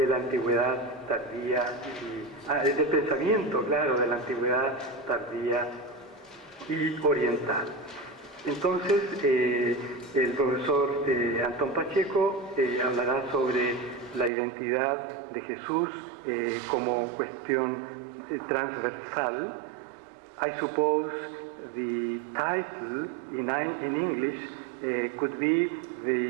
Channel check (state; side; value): drops out; left; at 14.3 s